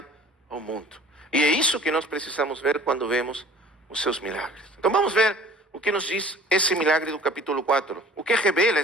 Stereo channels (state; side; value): normal; both; correlation 0.48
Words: ao mundo. E é isso que nós precisamos ver quando vemos os seus milagres. Então vamos ver o que nos diz esse milagre do capítulo 4. O que revela